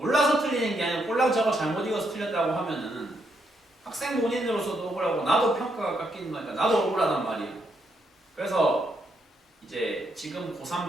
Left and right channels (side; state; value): both; normal; correlation 0.77